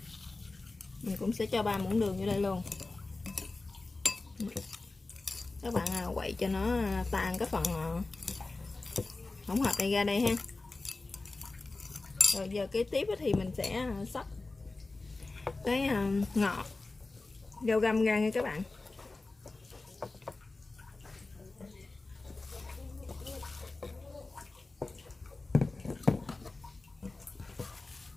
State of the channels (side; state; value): right; quieter; 3.4 dB